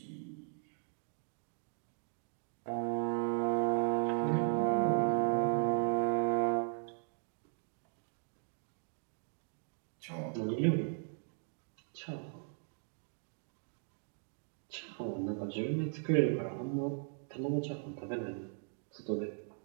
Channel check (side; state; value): left; silent; 53 dB below the other